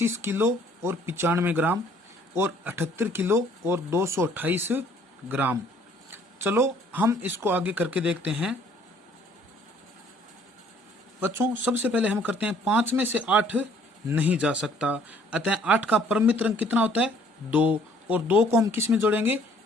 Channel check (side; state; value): both; normal; correlation 0.60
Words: किलो और 95 ग्राम और 78 किलो और 228 ग्राम। चलो हम इसको आगे करके देखते हैं। बच्चों सबसे पहले हम करते हैं 5 में से 8 नहीं जा सकता, अतः 8 का परमित अंक कितना होता है, 2, और 2 को हम किस में जोड़ेंगे,